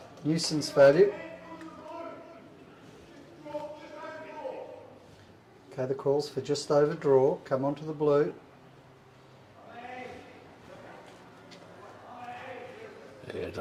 value. Okay, the calls for just over draw, come onto the blue. Yeah, I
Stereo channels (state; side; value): identical; both; correlation 1.00